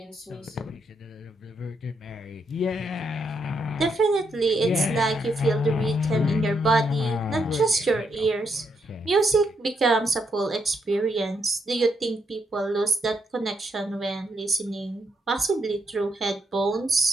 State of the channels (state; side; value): normal; both; correlation 0.78